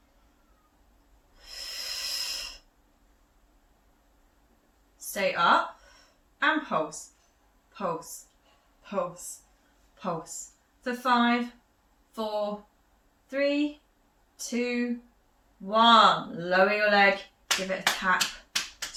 Stay up and pulse, pulse, pulse, pulse. For 5, 4, 3, 2, 1. Lower your leg, give it a tap,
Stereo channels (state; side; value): identical; both; correlation 1.00